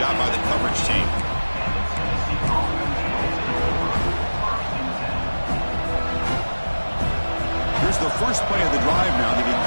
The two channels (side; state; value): both; inverted; correlation -1.00